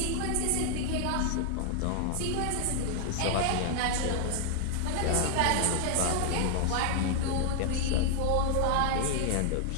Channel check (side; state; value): both; different; correlation 0.00